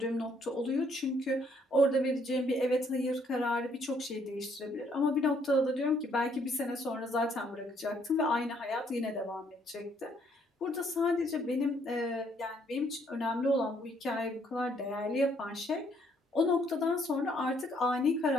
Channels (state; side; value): normal; both; correlation 0.67